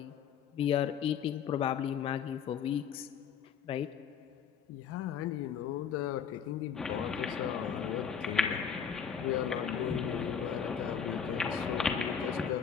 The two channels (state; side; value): quieter; right; 7.4 dB